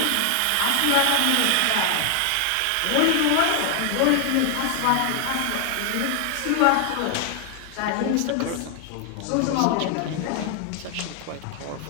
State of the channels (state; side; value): different; both; correlation 0.00